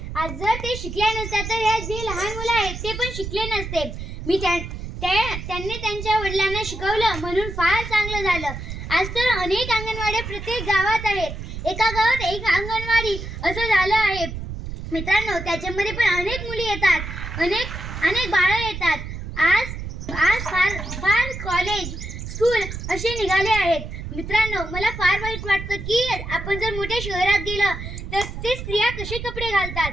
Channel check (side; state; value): right; noise; rumble, 8 dB below the sound